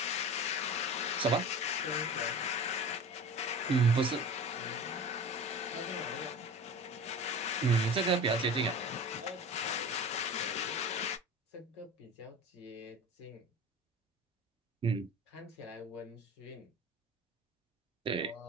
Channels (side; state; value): both; normal; correlation 0.34